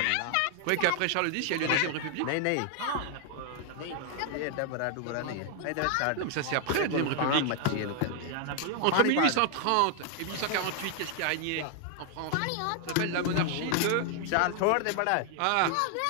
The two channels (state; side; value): different; both; correlation 0.00